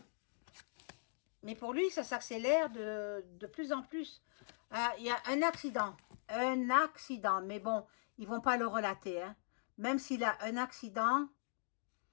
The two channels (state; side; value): silent; right; digital silence